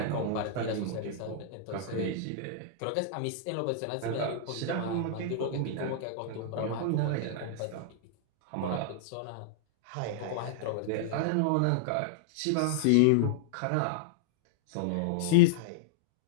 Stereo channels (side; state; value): both; different; correlation -0.01